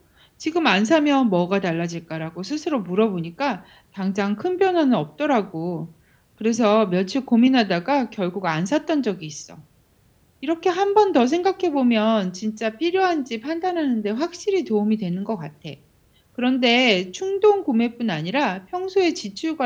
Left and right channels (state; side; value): identical; both; correlation 1.00